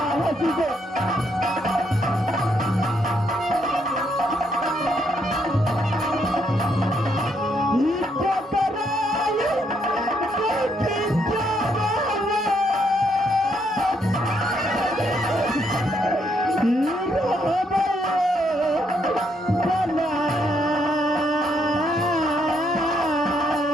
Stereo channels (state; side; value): normal; both; correlation 0.74